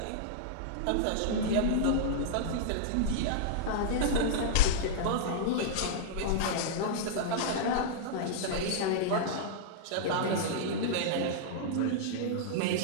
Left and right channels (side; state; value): both; different; correlation -0.02